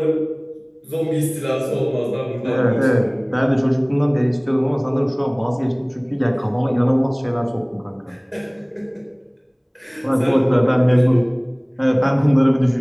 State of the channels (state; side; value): identical; both; correlation 1.00